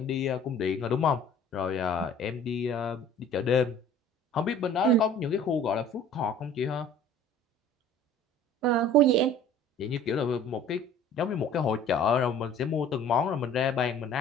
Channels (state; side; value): normal; both; correlation 0.48